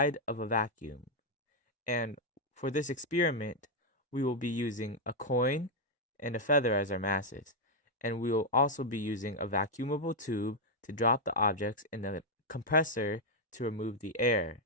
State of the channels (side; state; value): both; normal; correlation -0.01